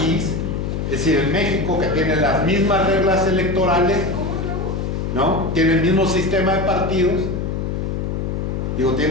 es decir, en México, que tiene las mismas reglas electorales, ¿no? Tiene el mismo sistema de partidos, digo,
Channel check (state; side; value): noise; left; hum, 2 dB below the sound